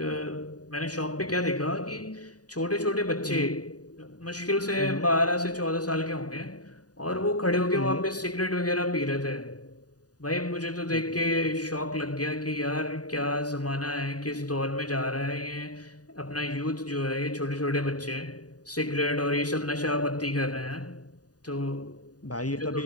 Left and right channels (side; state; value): right; late; 0.68 ms